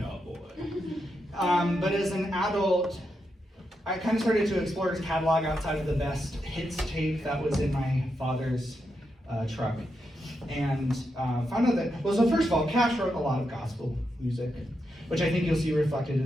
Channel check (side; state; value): both; normal; correlation 0.84